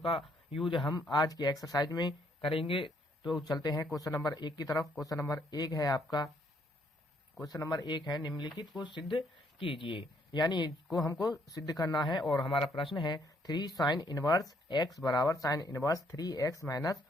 यूज हम आज की एक्सरसाइज में करेंगे। तो चलते हैं क्वेश्चन नंबर 1 की तरफ। क्वेश्चन नंबर 1 है आपका, क्वेश्चन नंबर 1 है निम्नलिखित को सिद्ध कीजिए, यानी इसको हमको सिद्ध करना है। और हमारा प्रश्न है 3 साइन इनवर्स एक्स बराबर sine inverse 3x minus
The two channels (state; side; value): normal; both; correlation 0.69